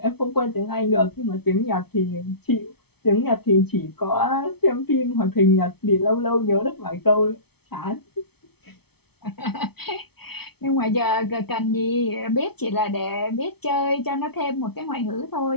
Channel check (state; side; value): late; right; 0.97 ms